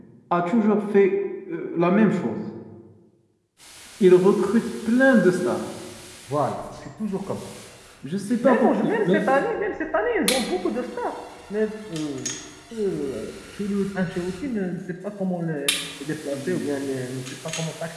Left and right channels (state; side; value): identical; both; correlation 1.00